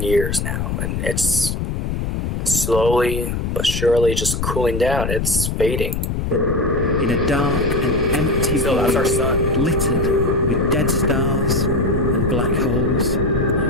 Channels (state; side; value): noise; left; rumble, 2 dB below the sound